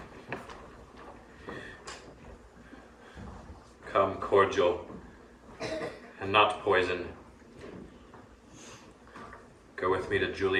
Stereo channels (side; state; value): both; identical; correlation 1.00